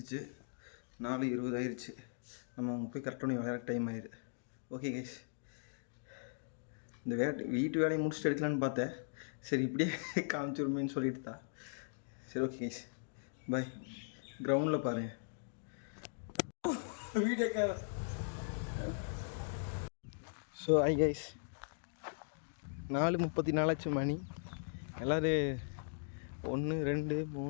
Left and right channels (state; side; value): silent; right; digital silence